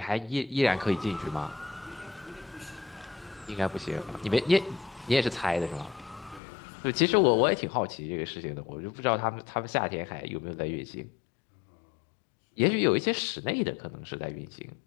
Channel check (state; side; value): drops out; right; at 6.4 s